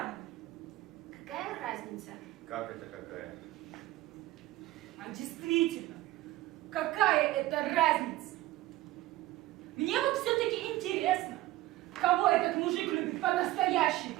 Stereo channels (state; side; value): quieter; left; 17.2 dB